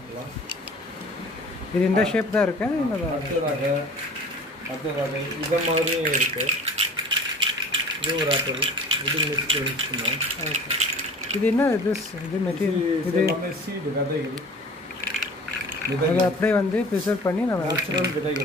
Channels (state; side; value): normal; both; correlation 0.43